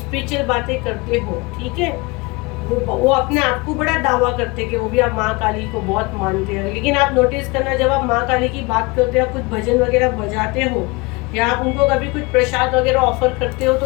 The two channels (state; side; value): quieter; right; 25.8 dB